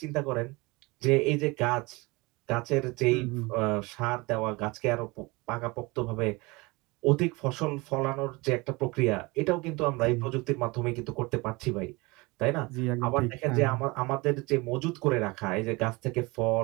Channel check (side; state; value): left; quieter; 24.5 dB